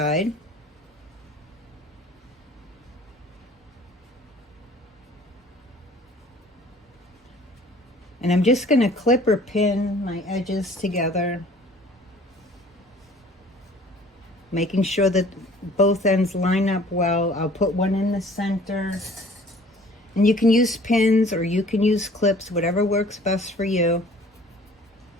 And I'm just going to clip or pin my edges together, making sure that both ends line up well. I'll put one in the center. And you can use pins or you can use clips, whatever works best for you.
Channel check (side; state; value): both; normal; correlation 0.51